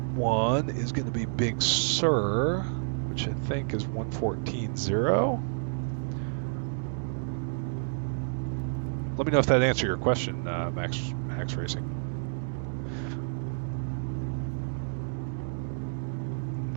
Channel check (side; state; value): left; silent; digital silence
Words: one is going to be Big Sur, which I think is 114.0. Let me know if that answered your question, Max Racing.